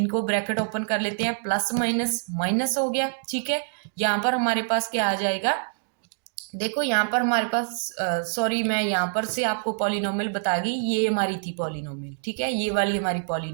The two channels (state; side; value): silent; left; digital silence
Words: ब्रैकेट ओपन कर लेते हैं, प्लस माइनस माइनस हो गया, ठीक है। यहाँ पर हमारे पास क्या आ जाएगा, देखो यहाँ पर हमारे पास सॉरी, मैं यहाँ पर से आपको पॉलिनोमियल बता गई, ये हमारी थी पॉलिनोमियल, ठीक है, ये वाली हमारी